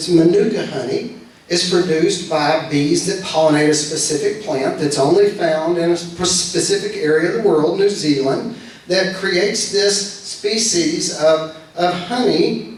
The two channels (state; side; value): identical; both; correlation 1.00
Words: Manuka honey, is produced by bees that pollinate a specific plant that's only found in a specific area of the world, New Zealand, that creates this species of honey